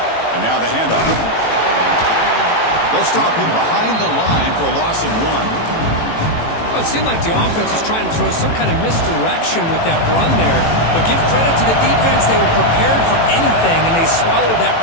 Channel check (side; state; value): right; late; 18 ms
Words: And now the handoff. They'll stop him behind the line for a loss of 1. Well, it seemed like the offense was trying to throw some kind of misdirection with that run there. But give credit to the defense. They were prepared for anything, and they swallowed that